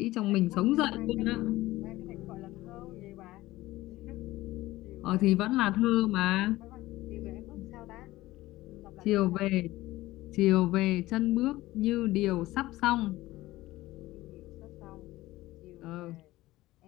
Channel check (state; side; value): quieter; right; 17.6 dB